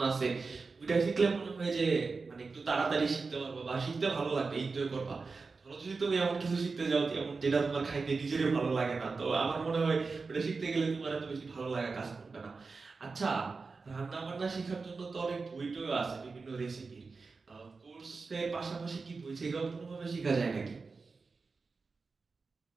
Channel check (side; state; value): left; quieter; 4.3 dB